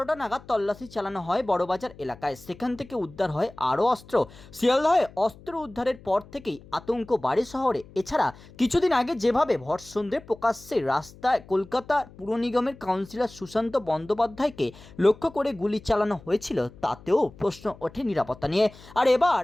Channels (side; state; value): left; noise; hum, 21 dB below the sound